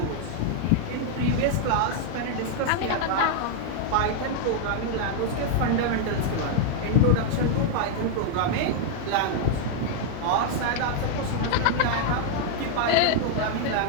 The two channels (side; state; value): both; different; correlation 0.00